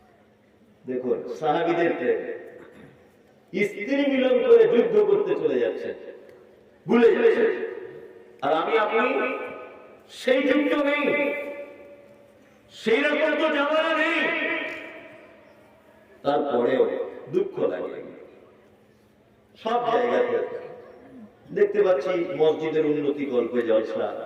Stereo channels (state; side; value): identical; both; correlation 1.00